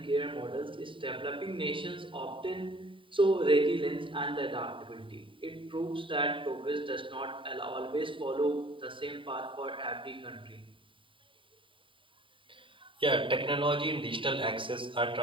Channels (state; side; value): late; left; 0.25 ms